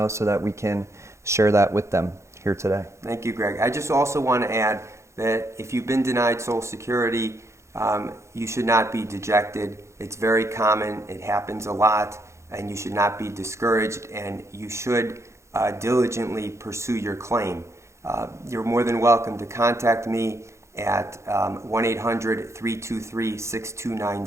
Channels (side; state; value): left; late; 0.14 ms